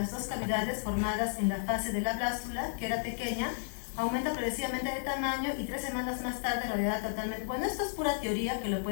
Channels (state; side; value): silent; right; digital silence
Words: 2 cavidades formadas en la fase de la blástula, que era pequeña, aumenta progresivamente de tamaño y 3 semanas más tarde rodeada totalmente. Bueno, esto es pura teoría que lo